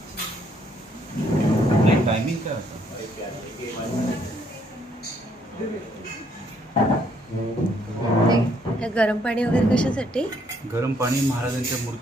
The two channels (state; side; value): normal; both; correlation 0.69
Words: टायमिंग काय होतं? गरम पाणी वगैरे कशासाठी? गरम पाणी महाराजांच्या